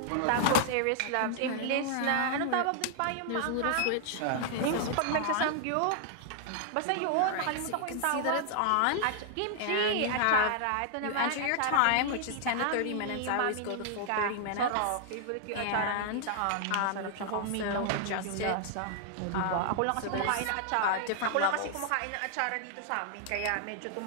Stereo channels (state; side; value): different; both; correlation 0.00